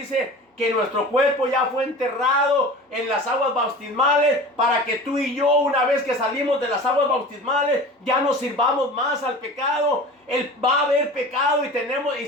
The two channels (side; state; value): both; normal; correlation 0.37